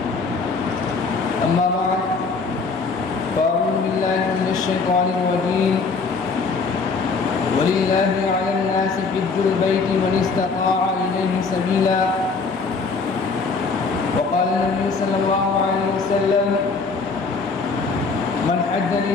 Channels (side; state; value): right; quieter; 4.5 dB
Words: أما بعد فأعوذ بالله من الشيطان الرجيم ولله على الناس حج البيت من استطاع إليه سبيلا وقال النبي صلى الله عليه وسلم من حج